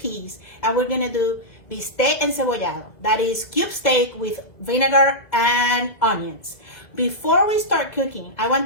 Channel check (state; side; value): late; right; 2.0 ms